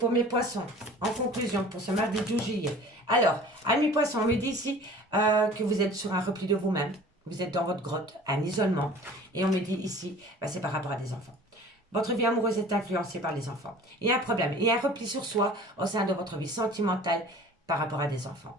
en conclusion, pour ce mardi 12 juillet. Alors, ami poisson, on me dit ici que vous êtes sur un repli de vous-même. Vous êtes dans votre grotte, un isolement. Et on me dit ici, c'est par rapport à des enfants. Votre vie amoureuse est influencée par les enfants. Il y a un problème, il y a un repli sur soi au sein de votre vie sentimentale par rapport à des enfants.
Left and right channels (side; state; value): both; normal; correlation 0.45